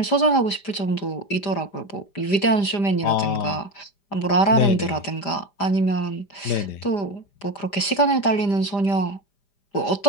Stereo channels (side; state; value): right; late; 5.0 ms